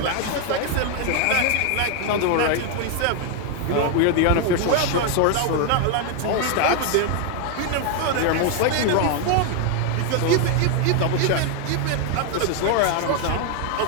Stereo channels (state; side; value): different; both; correlation 0.01